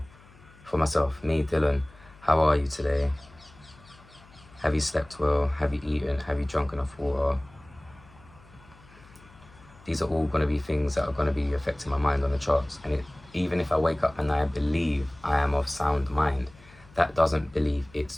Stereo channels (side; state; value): left; noise; hum, 25 dB below the sound